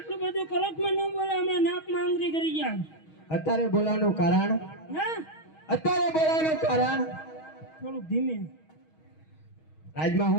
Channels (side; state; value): right; late; 6.3 ms